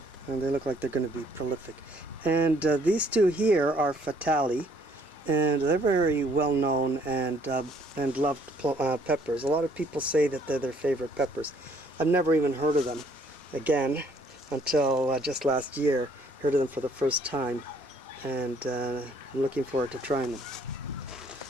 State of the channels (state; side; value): normal; both; correlation 0.63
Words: and they look like they're going to be prolific. And these 2 here are Fatali, and they're very well known and loved peppers. A lot of people say that they're their favorite peppers. I've never even heard of them again until just last year. Heard of them for the first time, and I'm looking forward to trying them.